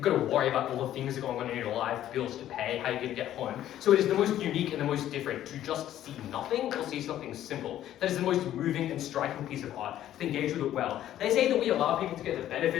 got to worry about all the things that are going on in your life, bills to pay, how you're going to get home. So it is the most unique and the most different to just see nothing or see something simple. That is the most moving and striking piece of art, to engage with it well. They say that we allow people to get the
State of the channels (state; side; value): quieter; right; 12.2 dB